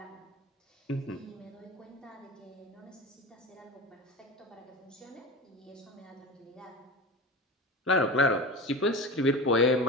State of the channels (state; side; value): normal; both; correlation 0.29